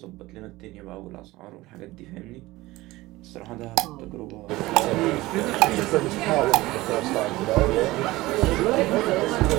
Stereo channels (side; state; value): left; quieter; 19.1 dB